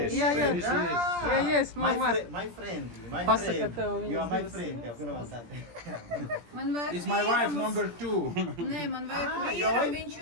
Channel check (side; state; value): left; late; 17 ms